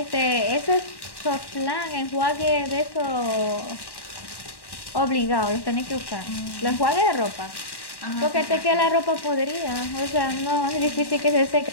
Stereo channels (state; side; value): late; right; 1.1 ms